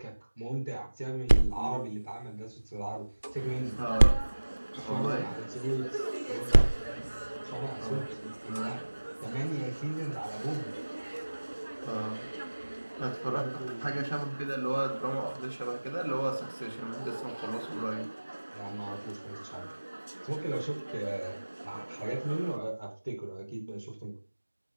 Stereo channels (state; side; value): inverted; both; correlation -1.00